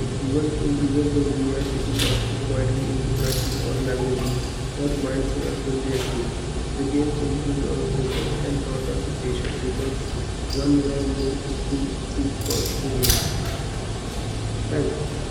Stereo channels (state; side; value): identical; both; correlation 1.00